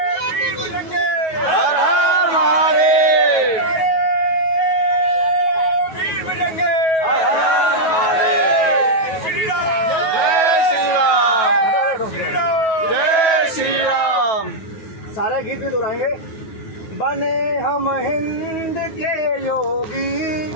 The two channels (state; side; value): late; right; 9.3 ms